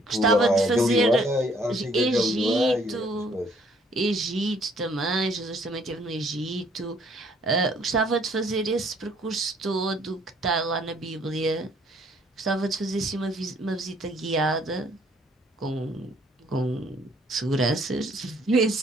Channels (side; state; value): both; normal; correlation 0.62